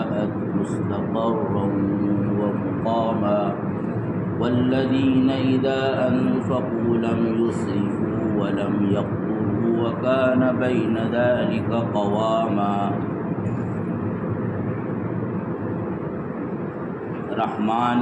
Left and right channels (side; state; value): both; identical; correlation 1.00